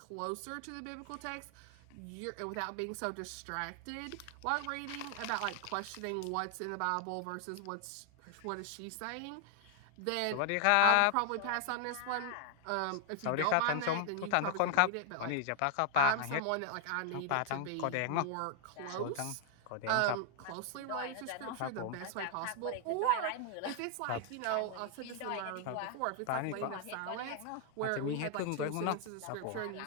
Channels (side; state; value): both; different; correlation 0.00